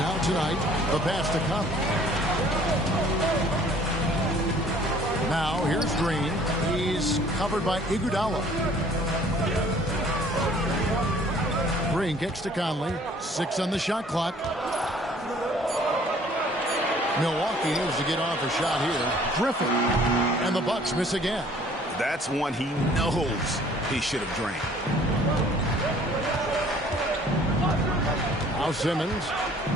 tonight. The pass to come. Now, here's Green. He's covered by Iguodala. Green kicks to Conley. 6 on the shot clock. Milwaukee needs to get off a shot here. Griffin. And the Bucks miss again. That's one he knows he should have drained. Now Simmons.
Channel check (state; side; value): normal; both; correlation 0.55